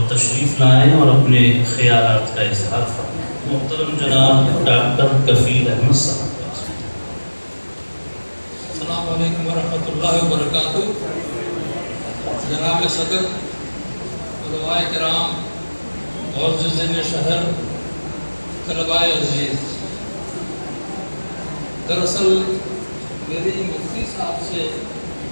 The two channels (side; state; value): both; inverted; correlation -1.00